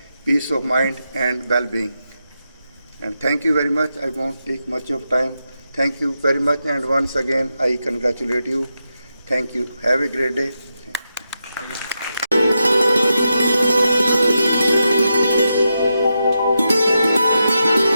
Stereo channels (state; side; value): inverted; both; correlation -0.87